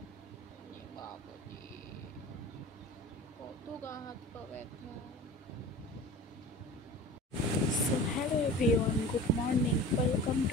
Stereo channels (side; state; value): both; normal; correlation 0.37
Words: বাবারে, কত গা হাত পা ব্যথা। So hello everyone, good morning, welcome